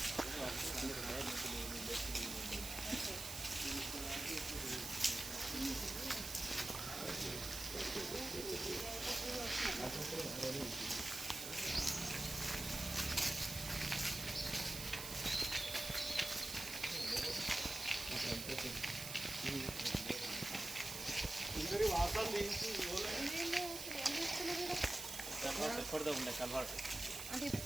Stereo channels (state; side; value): noise; right; hiss, 6 dB below the sound